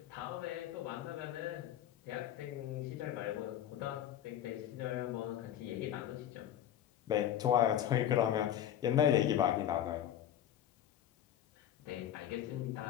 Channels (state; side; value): quieter; right; 10.9 dB